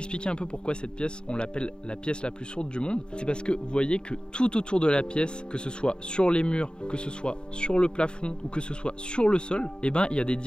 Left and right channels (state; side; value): late; right; 0.050 ms